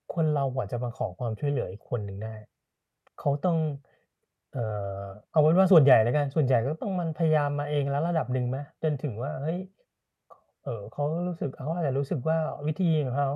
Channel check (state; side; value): identical; both; correlation 1.00